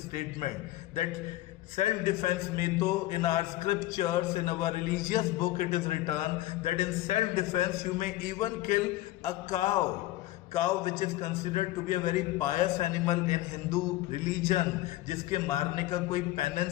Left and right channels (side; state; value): right; quieter; 16.3 dB